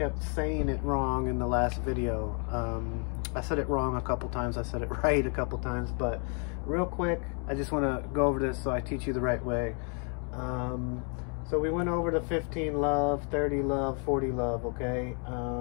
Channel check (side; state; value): right; quieter; 39.2 dB